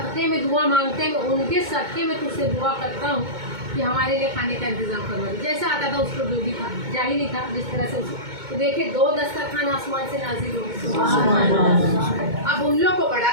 में दुआ मांगते हैं, उनके सदक़े में तुझसे दुआ करता हूँ कि हमारे लिए खाने का इंतज़ाम करवा दे। जैसा आता था उसको जो भी था, जाहिल ही था जिस तरह से उसको, तो देखे 2 दस्तरखान आसमान से नाज़िल हो गए। अब उन लोग को बड़ा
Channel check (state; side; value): late; left; 2.2 ms